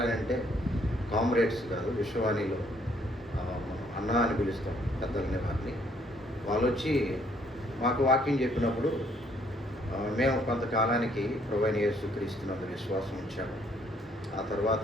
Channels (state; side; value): normal; both; correlation 0.66